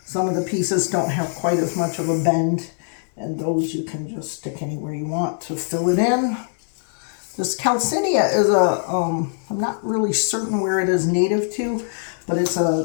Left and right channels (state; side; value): silent; right; digital silence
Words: Some of the pieces don't have quite as much of a bend, and those you can just stick anywhere you want to fill it in. This calcenia is I'm not really certain where it is native to, but it's